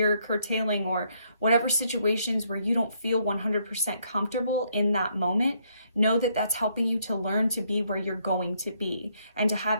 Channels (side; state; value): both; inverted; correlation -0.71